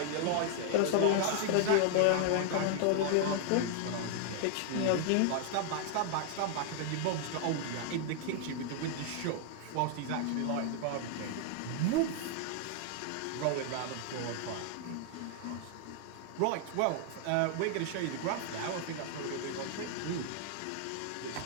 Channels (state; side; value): different; both; correlation 0.00